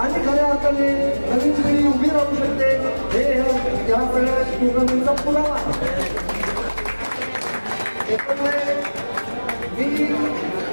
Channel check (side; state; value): both; inverted; correlation -1.00